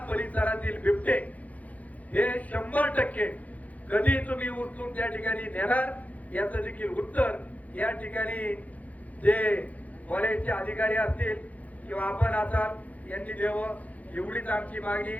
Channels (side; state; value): right; late; 0.073 ms